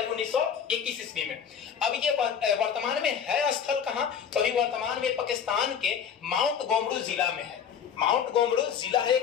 1921 ईस्वी में। अब ये वर्तमान में है स्थल कहां? तो अभी वर्तमान में पाकिस्तान के माउंट गोमरू जिला में है। माउंट गोमरू जिला है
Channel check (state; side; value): quieter; right; 7.7 dB